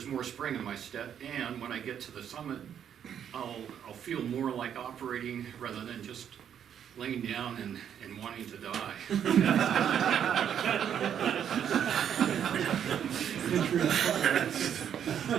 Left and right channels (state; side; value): quieter; left; 8.9 dB